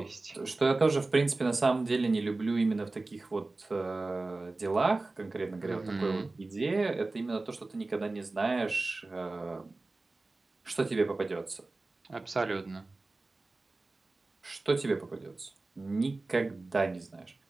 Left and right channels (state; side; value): quieter; left; 3.3 dB